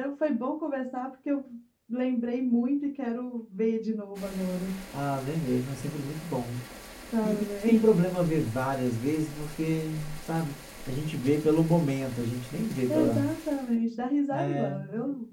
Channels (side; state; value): both; identical; correlation 1.00